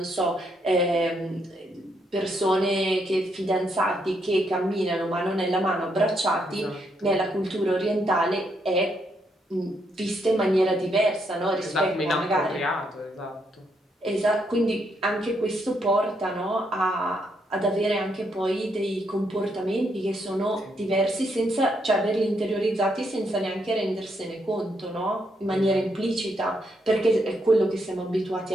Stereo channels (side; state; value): both; normal; correlation 0.76